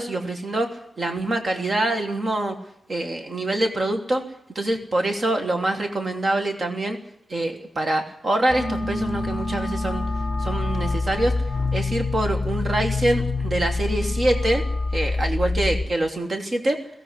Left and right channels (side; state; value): both; normal; correlation 0.90